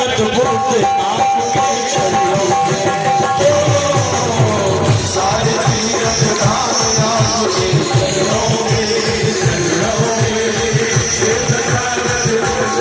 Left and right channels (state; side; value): identical; both; correlation 1.00